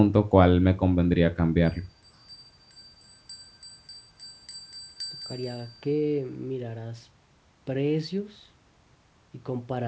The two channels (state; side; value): identical; both; correlation 1.00